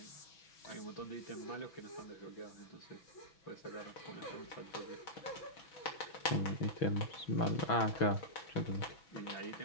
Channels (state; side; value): late; right; 6.3 ms